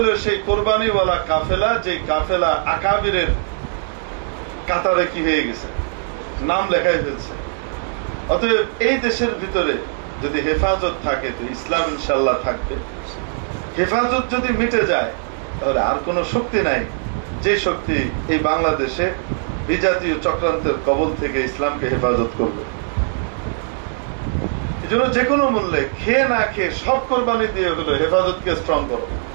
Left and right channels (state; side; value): silent; left; digital silence